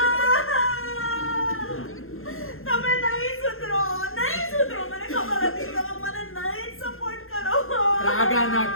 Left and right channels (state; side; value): late; right; 0.60 ms